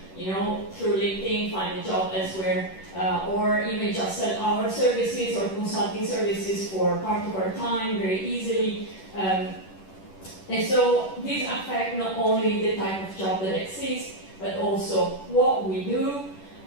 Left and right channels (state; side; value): late; right; 10 ms